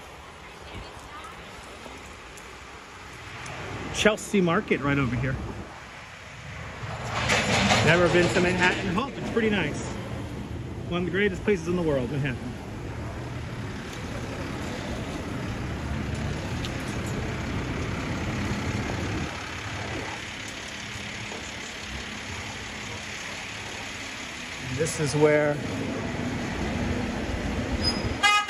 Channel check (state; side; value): identical; both; correlation 1.00